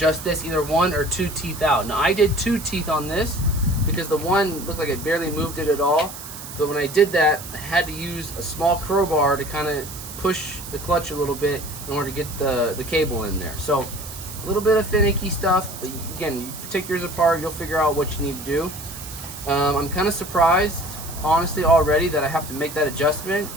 this either 1 or 2 teeth out. Now I did 2 teeth on this because the one looked like it barely moved it at all. But when I did that, I had to use a small crowbar to kind of push the clutch a little bit in order to get the cable in there. So a little bit of finicky stuff, but again, you take yours apart, you'll figure out what you need to do. I'm kind of surprised, honestly, already that I have to make that adjustment.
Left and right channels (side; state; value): right; noise; hiss, 12 dB below the sound